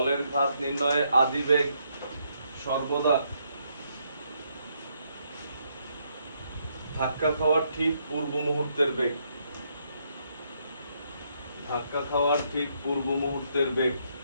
ঘাত নির্ণয়ে আদিবেগ সর্বদা ধাক্কা খাওয়ার ঠিক পূর্ব মুহূর্তের বেগ, ধাক্কা খাওয়ার ঠিক পূর্ব মুহূর্তের বেগ,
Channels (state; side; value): inverted; both; correlation -0.74